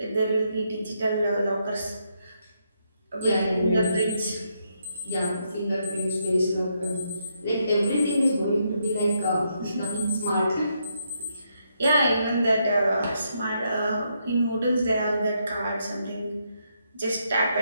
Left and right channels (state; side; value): inverted; both; correlation -0.78